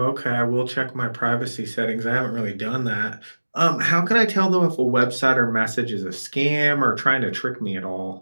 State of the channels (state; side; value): inverted; both; correlation -1.00